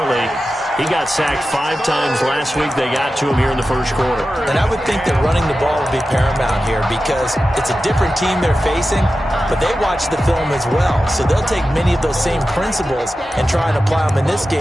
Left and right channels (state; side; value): normal; both; correlation 0.93